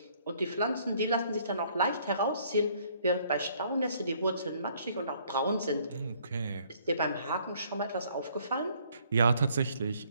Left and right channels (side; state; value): both; inverted; correlation -0.63